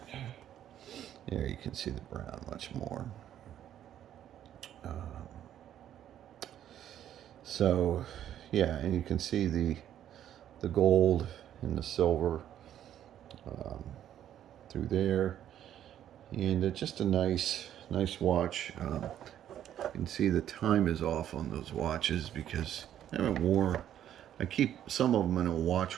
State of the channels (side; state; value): left; quieter; 10.9 dB